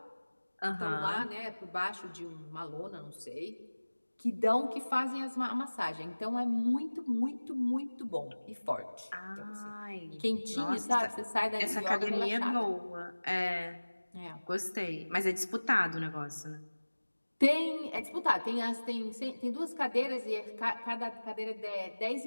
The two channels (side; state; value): both; inverted; correlation -1.00